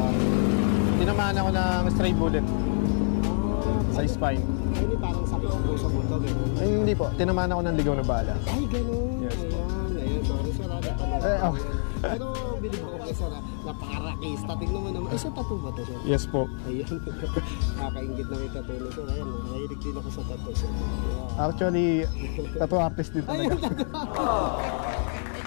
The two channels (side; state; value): right; silent; digital silence